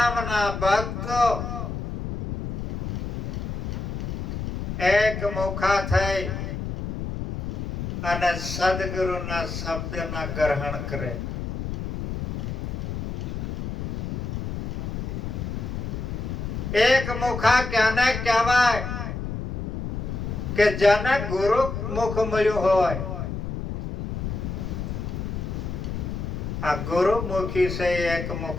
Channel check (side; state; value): left; noise; rumble, 4 dB below the sound